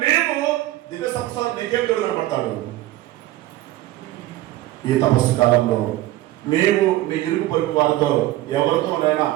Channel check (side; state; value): left; quieter; 15.7 dB